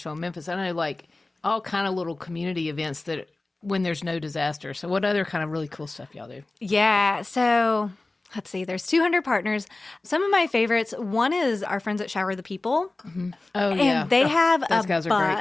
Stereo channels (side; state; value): right; quieter; 3.0 dB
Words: and Memphis. I know, like all kind of little community events that when there's no disaster. So what other kind of really cool stuff y'all do? Yeah. So. Let's see, there's 200 partners. Some of my favorites, one is our friends at Shower the People. Mm-hmm. Oh, yeah. And they have a